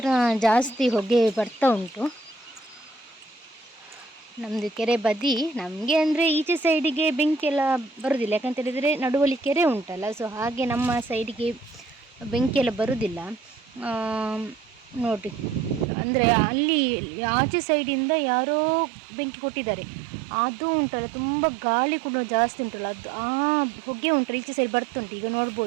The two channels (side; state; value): left; drops out; at 15.9 s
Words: ಜಾಸ್ತಿ ಹೊಗೆ ಬರ್ತಾ ಉಂಟು ನಮ್ಮದು ಕೆರೆ ಬದಿ. ನಮಗೆ ಅಂದರೆ ಈಚೆ ಸೈಡಿಗೆ ಬೆಂಕಿ ಎಲ್ಲ ಬರೋದಿಲ್ಲ, ಯಾಕಂತ ಹೇಳಿದರೆ ನಡುವಲ್ಲಿ ಕೆರೆ ಉಂಟಲ್ಲ. ಸೊ ಹಾಗೆ ನಮ್ಮ ಸೈಡಿಗೆ ಬೆಂಕಿ ಎಲ್ಲ ಬರೋದಿಲ್ಲ ನೋಡಿ. ಅಂದರೆ ಅಲ್ಲಿ ಆಚೆ ಸೈಡಿಂದ ಯಾರೋ ಬೆಂಕಿ ಕೊಟ್ಟಿದ್ದಾರೆ, ಅದು ಉಂಟಲ್ಲ ತುಂಬ ಗಾಳಿ ಕೂಡ ಜಾಸ್ತಿ ಉಂಟಲ್ಲ, ಅದು ಆ ಹೊಗೆ ಉಂಟಲ್ಲ ಈಚೆ ಸೈಡ್ ಬರ್ತುಂಟು. ಈಗ